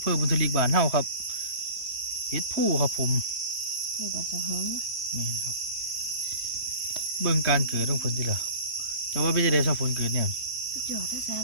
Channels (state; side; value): late; left; 3.1 ms